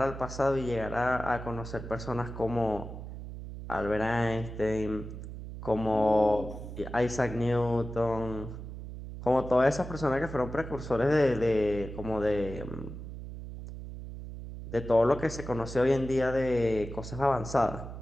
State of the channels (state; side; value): noise; right; hum, 10 dB below the sound